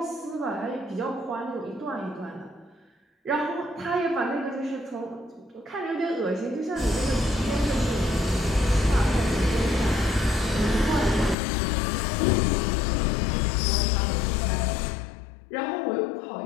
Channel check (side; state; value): right; drops out; at 11.4 s